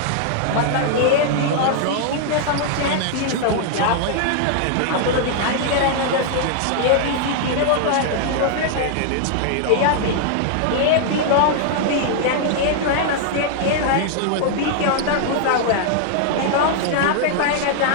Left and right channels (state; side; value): different; both; correlation 0.00